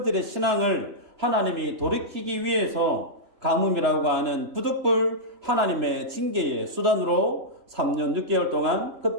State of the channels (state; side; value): late; left; 3.3 ms